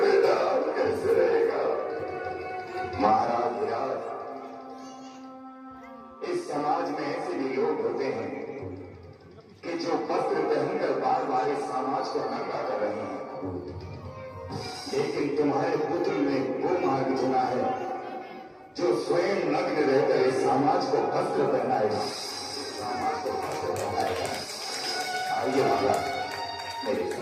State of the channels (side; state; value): both; identical; correlation 1.00